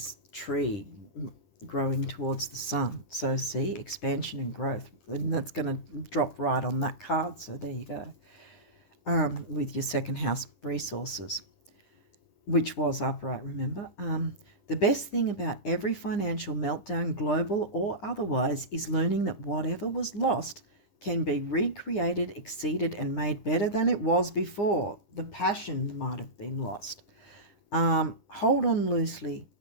tree growing towards the sun. So see, expansion and growth. And that's going to drop right on that card. So there you go. With your second house resources, which was upright, remember? The best thing about every financial meltdown, global or otherwise, is learning that whatever was lost can be recreated, exceeded, and made better than it was before. The passion might have been lost. Hold on loosely,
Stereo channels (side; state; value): right; late; 9.8 ms